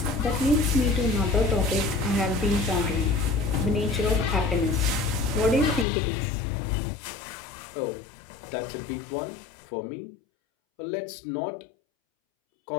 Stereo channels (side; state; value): right; drops out; at 5.9 s